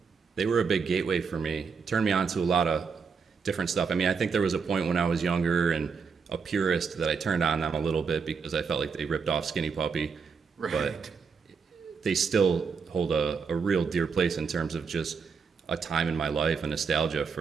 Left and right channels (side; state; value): left; quieter; 5.6 dB